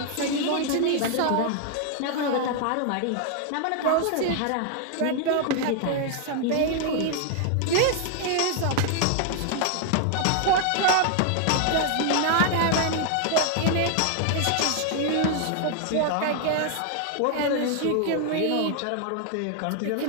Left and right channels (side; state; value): both; different; correlation 0.00